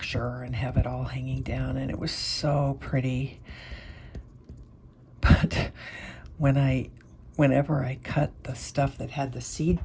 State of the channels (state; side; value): identical; both; correlation 1.00